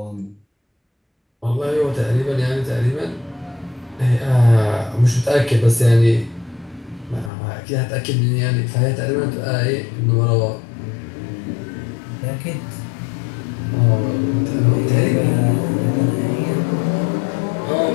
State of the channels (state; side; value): drops out; right; at 7.3 s